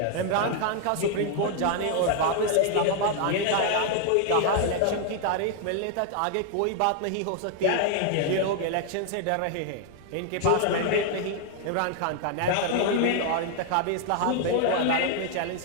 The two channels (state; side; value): different; both; correlation 0.00